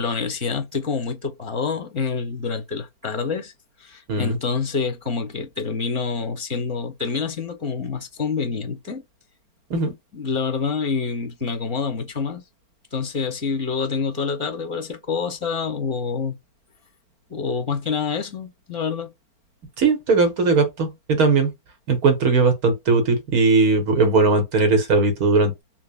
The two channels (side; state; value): left; late; 4.4 ms